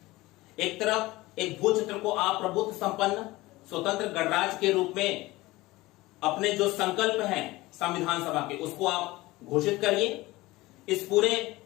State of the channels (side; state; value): right; quieter; 19.6 dB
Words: एक तरफ एक भू क्षेत्र को आप प्रभुत्व संपन्न स्वतंत्र गणराज्य के रूप में अपने जो संकल्प हैं संविधान सभा के, उसको आप घोषित करिए। इस पूरे